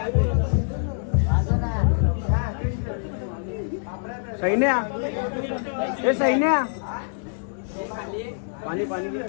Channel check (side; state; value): right; silent; digital silence